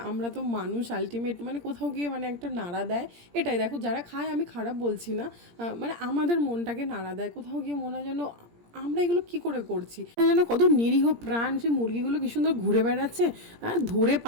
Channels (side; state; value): left; late; 17 ms